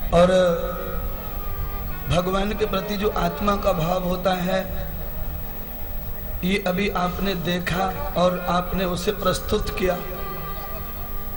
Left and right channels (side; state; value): both; identical; correlation 1.00